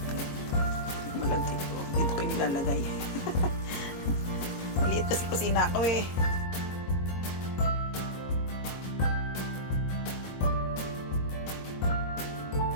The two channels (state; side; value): late; right; 22 ms